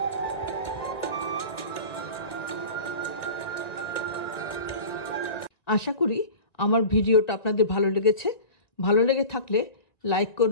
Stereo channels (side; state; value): right; late; 1.9 ms